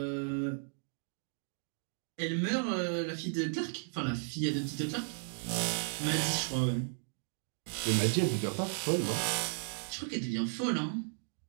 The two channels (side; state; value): left; silent; digital silence